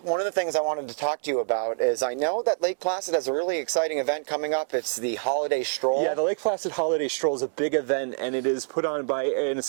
one of the things I wanted to talk to you about is I know that Lake Placid has a really exciting event coming up. It's the Holiday Stroll. Yeah, the Lake Placid Holiday Stroll is a big event, and it is put on by and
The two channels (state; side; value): silent; left; 61 dB below the other